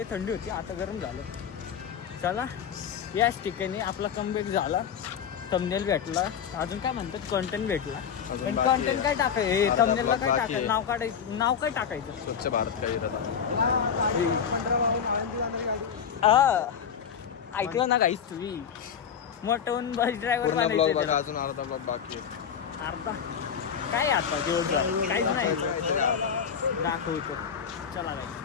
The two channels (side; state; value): right; quieter; 7.6 dB